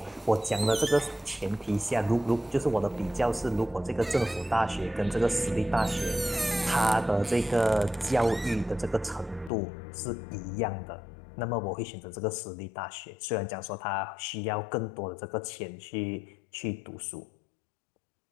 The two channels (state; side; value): drops out; right; at 9.5 s